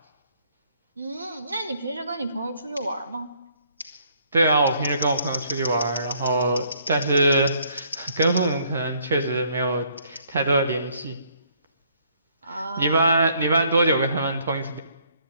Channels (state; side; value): inverted; both; correlation -0.66